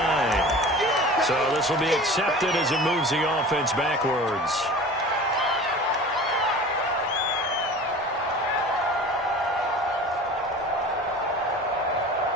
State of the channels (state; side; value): normal; both; correlation 0.39